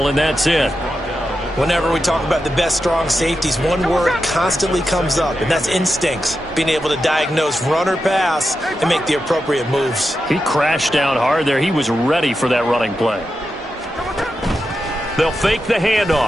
and that's it. Whenever we talk about the best strong safeties, one word constantly comes up, and that's instincts. Being able to diagnose run or pass and make the appropriate moves. He crashed down hard there. He was ready for that running play. They'll fake the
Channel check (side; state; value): both; normal; correlation 0.89